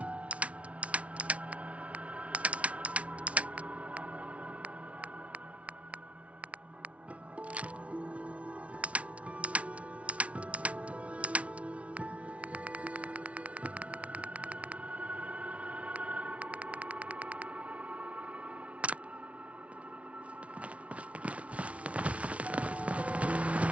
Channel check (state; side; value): late; left; 0.064 ms